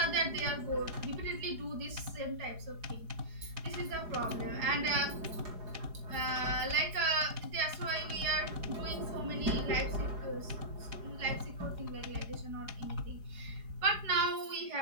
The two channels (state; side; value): late; left; 4.8 ms